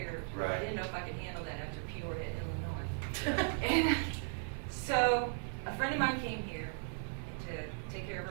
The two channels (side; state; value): left; silent; 53 dB below the other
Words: Right. I didn't know if I could handle that after Peoria, Illinois. And so a friend of mine came here to take care of